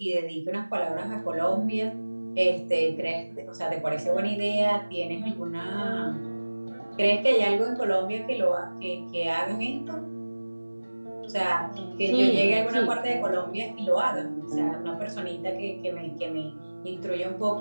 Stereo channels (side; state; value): both; inverted; correlation -1.00